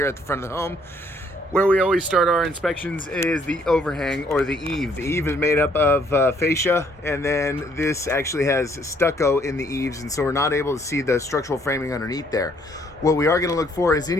at the front of the home. Where we always start our inspections is the overhang or the eave. The eave is made up of fascia, and then this actually has stucco in the eaves, and so we're not able to see the structural framing underneath there. What we are going to look for is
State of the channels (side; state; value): both; normal; correlation 0.66